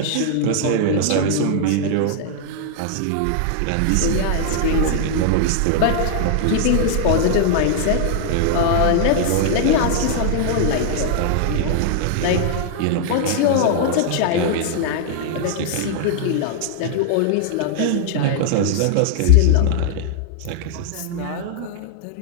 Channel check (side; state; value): both; different; correlation -0.01